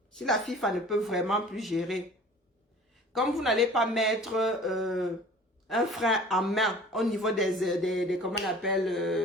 Si la FIFA ne peut vraiment plus gérer, comme vous n'allez pas mettre un frein en main au niveau des comment on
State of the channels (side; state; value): both; normal; correlation 0.46